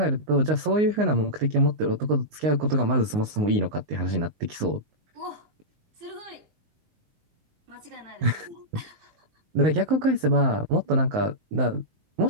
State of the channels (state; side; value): late; left; 19 ms